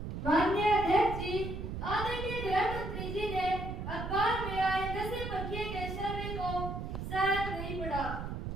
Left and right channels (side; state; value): right; noise; rumble, 5 dB below the sound